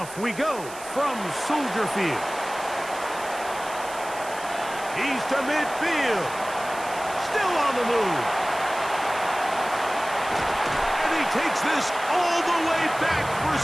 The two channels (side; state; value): right; noise; hiss, 15 dB below the sound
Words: we go from Soldier Field. He's to midfield. Still on the move. And he takes this all the way back for